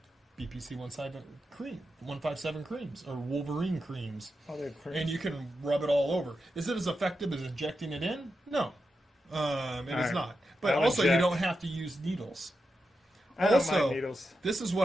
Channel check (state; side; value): normal; both; correlation 0.88